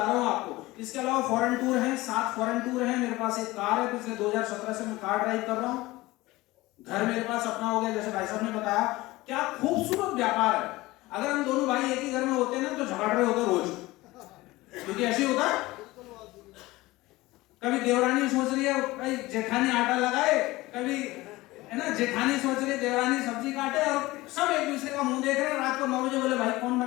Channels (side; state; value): right; quieter; 19.6 dB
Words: रहा हूं आपको। इसके अलावा फॉरेन टूर है, 7 फॉरेन टूर है, मेरे पास एक कार है, पिछले 2017 से मैं कार ड्राइव कर रहा हूं, घर मेरे पास अपना हो गया, जैसे भाई साहब ने बताया। क्या खूबसूरत व्यापार है। अगर हम दोनों भाई एक ही घर में होते ना तो झगड़ रहे होते रोज, क्योंकि ऐसे होता है। कभी देवरानी सोच रही है भाई जेठानी आटा लगाए, कभी है ना जेठानी सोच रही है देवरानी सब्जी काटे, और सब एक दूसरे का मुंह देख रहे हैं। रात को 9 बजे बोले भाई कौन